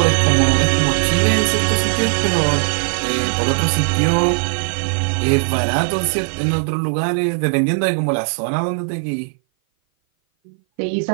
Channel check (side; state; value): left; silent; 57 dB below the other